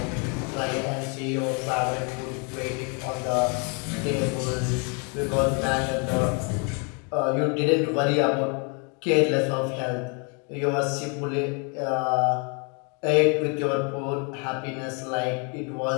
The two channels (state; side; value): quieter; right; 35.4 dB